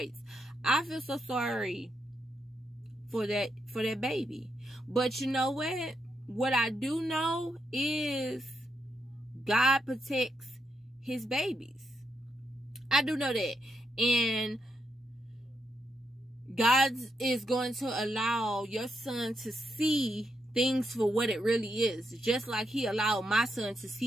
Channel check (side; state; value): both; normal; correlation 0.81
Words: I feel so sorry for that baby. But you know what? What I do know is God protects his babies. I do know that. And God is going to allow your son to see things for what it really is. Just like he allowed my son to